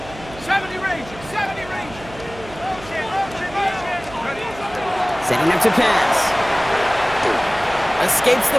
70 Ranger, 70 Ranger. Setting up to pass. Escapes the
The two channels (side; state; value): right; noise; hum, 17 dB below the sound